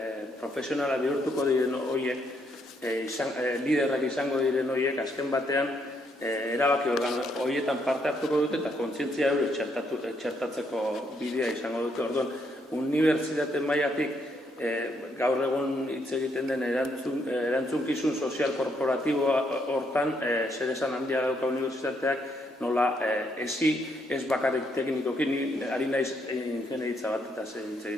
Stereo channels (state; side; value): normal; both; correlation 0.74